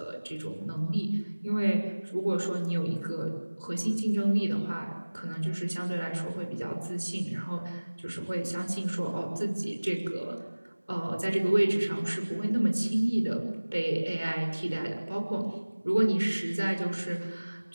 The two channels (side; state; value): both; inverted; correlation -1.00